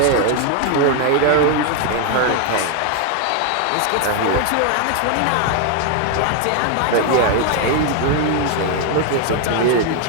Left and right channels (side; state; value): both; different; correlation 0.01